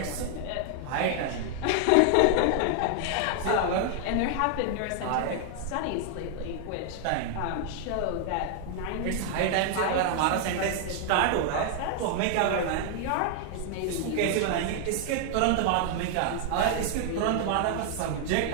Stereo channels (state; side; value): different; both; correlation 0.00